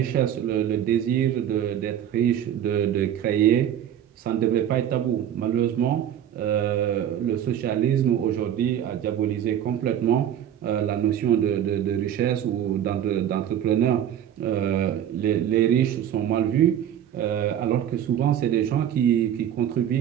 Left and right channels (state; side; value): quieter; left; 10.2 dB